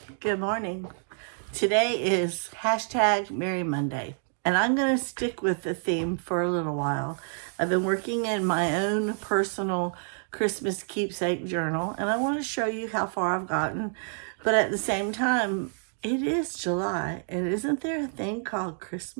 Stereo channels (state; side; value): silent; left; 59 dB below the other